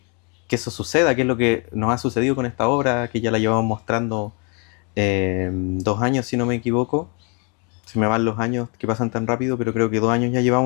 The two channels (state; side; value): quieter; right; 35.0 dB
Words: eso suceda, que es lo que nos ha sucedido con esta obra, que ya la llevamos mostrando 2 años, si no me equivoco. Se me van los años que pasan tan rápido, pero creo que 2 años ya